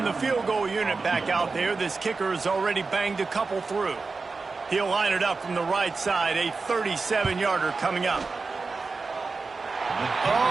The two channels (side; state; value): left; quieter; 4.2 dB